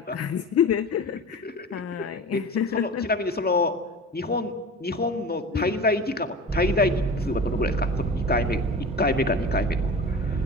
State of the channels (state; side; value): normal; both; correlation 0.34